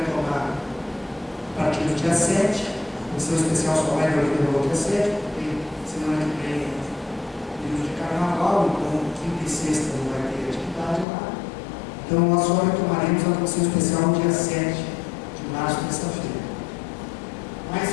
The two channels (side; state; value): right; drops out; at 11.1 s